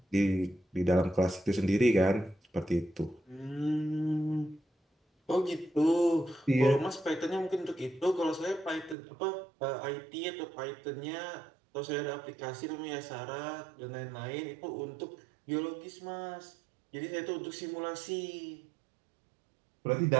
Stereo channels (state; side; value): drops out; left; at 9.0 s